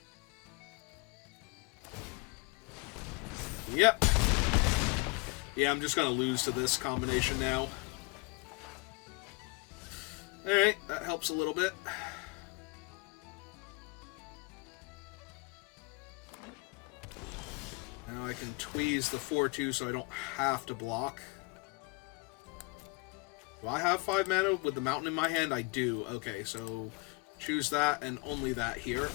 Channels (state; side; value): quieter; right; 28.6 dB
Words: Yep. Yeah, I'm just gonna lose to this combination now. Alright, that helps a little bit. Now I can tweeze the 4-2 so I don't have to block. Do I have 5 mana with the mountain in my hand? I do. Okay, so choose that and only that here.